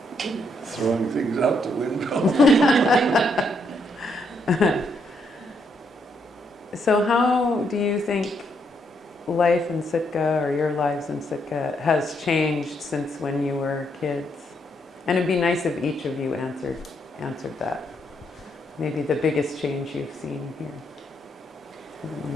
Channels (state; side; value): normal; both; correlation 0.75